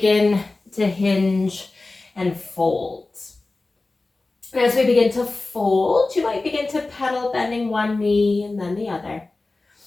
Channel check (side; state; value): right; quieter; 3.3 dB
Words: to hinge and fold. As we begin to fold, you might begin to pedal, bending one knee and then the other.